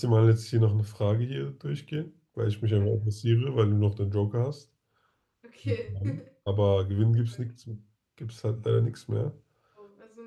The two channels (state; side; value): identical; both; correlation 1.00